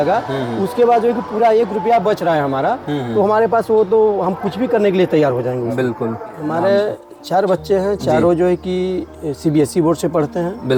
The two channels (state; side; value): identical; both; correlation 1.00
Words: उसके बाद जो है कि पूरा 1 रुपया बच रहा है हमारा, तो हमारे पास वो तो हम कुछ भी करने के लिए तैयार हो जाएंगे। बिल्कुल। हमारे 4 बच्चे हैं, चारों जो है कि CBSE बोर्ड से पढ़ते हैं।